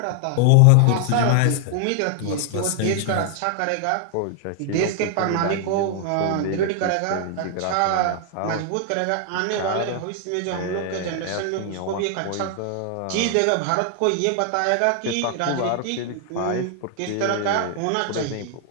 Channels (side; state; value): both; different; correlation 0.00